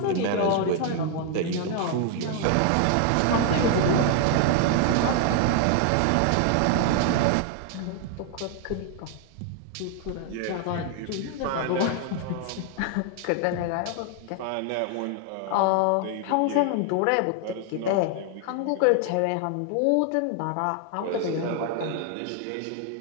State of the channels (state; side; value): different; both; correlation 0.00